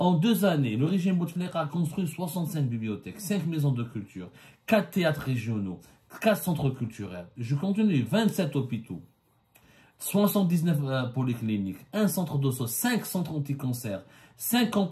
2 années, le régime Bouteflika a construit 65 bibliothèques, 5 maisons de culture, 4 théâtres régionaux, 4 centres culturels. Je continue, 27 hôpitaux, 79 polycliniques, 1 centre d'osso, 5 centres anti-cancer, 5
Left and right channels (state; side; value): identical; both; correlation 1.00